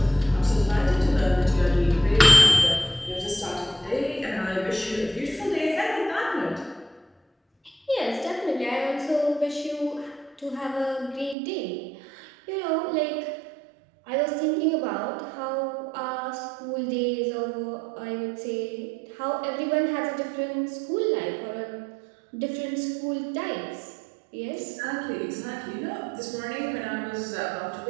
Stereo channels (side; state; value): left; drops out; at 11.4 s